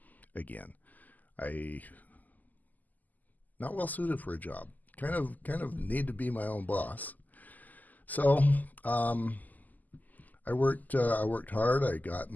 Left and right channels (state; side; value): late; right; 0.082 ms